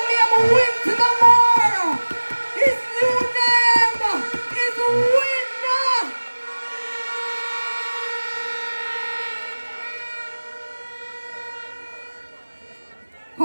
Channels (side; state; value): both; inverted; correlation -1.00